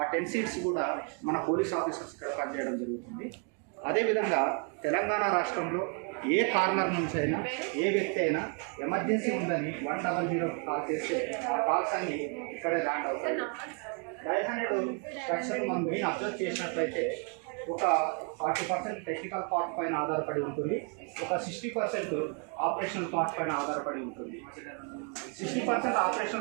10 సీట్స్ కూడా మన పోలీస్ ఆఫీసర్స్ ఇక్కడ పనిచేయడం జరుగుతుంది. అదేవిధంగా తెలంగాణ రాష్ట్రంలో ఏ కార్నర్ నుంచి అయినా ఏ వ్యక్తి అయినా ఎమర్జెన్సీ ఉందని 100 కాల్ చేస్తే ఆ కాల్స్ అన్ని ఇక్కడే ల్యాండ్ అవుతాయి. డయల్ 100 స్ట్రక్చర్ మనం మెయిన్ అబ్జర్వ్ చేసినట్లయితే ఒక 40% టెక్నికల్ పార్ట్ పైన ఆధారపడి ఉంటుంది, ఒక 60% ఆపరేషనల్ పార్ట్ పైన ఆధారపడి ఉంటుంది. 60%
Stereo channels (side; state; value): left; quieter; 38.1 dB